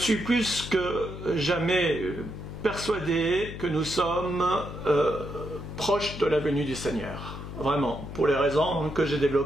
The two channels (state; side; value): noise; left; hum, 9 dB below the sound